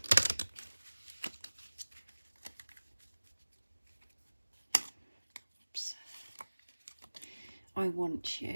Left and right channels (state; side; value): inverted; both; correlation -1.00